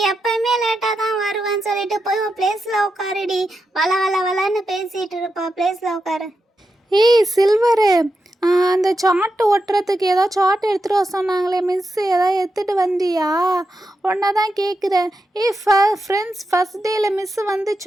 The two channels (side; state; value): both; normal; correlation 0.87